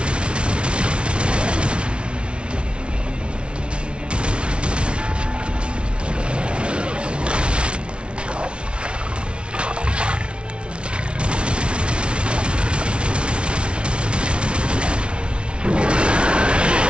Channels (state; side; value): late; left; 0.058 ms